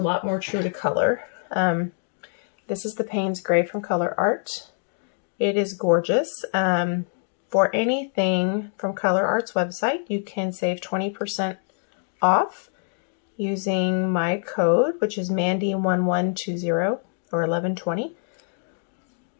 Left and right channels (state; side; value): silent; right; digital silence